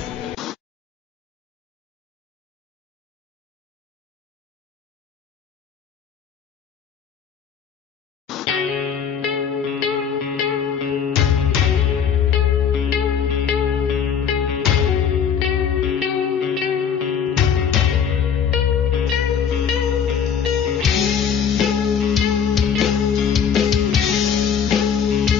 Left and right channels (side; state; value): right; quieter; 7.5 dB